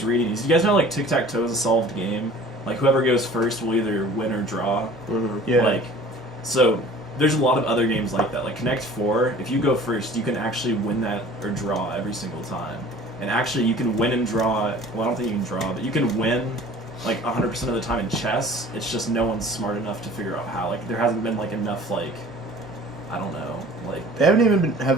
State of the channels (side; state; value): both; normal; correlation 0.46